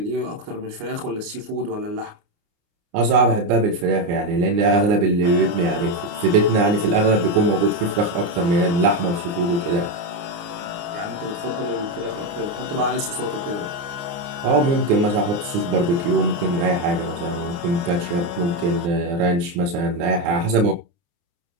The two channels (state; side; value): late; left; 29 ms